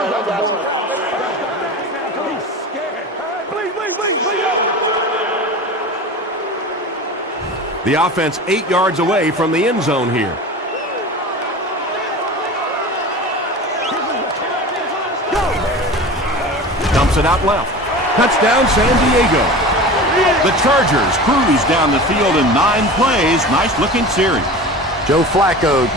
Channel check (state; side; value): normal; both; correlation 0.34